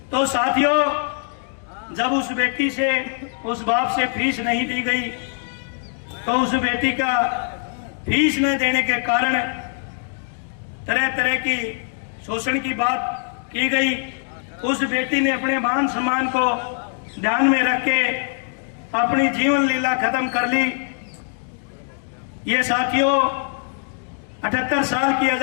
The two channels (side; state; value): right; silent; 60 dB below the other